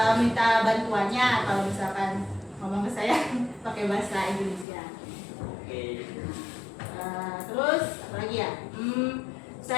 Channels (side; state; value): right; drops out; at 4.7 s